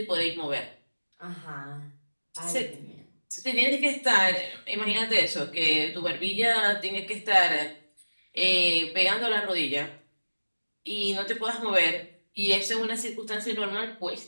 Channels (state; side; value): inverted; both; correlation -1.00